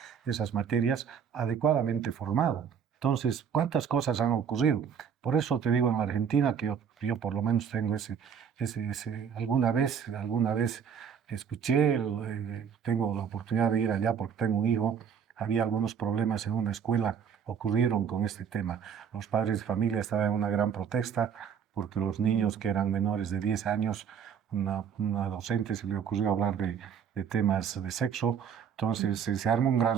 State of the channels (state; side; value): quieter; left; 7.5 dB